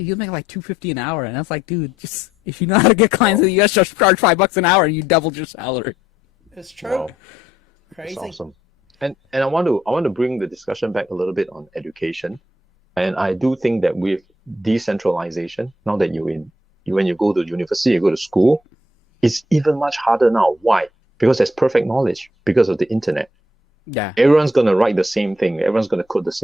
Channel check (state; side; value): normal; both; correlation 0.71